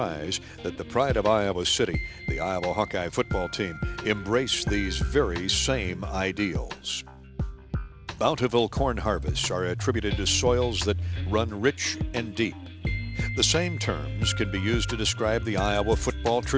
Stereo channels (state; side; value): identical; both; correlation 1.00